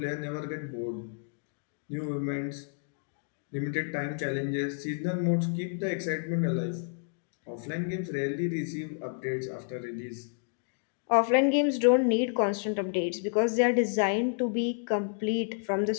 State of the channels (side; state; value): right; silent; digital silence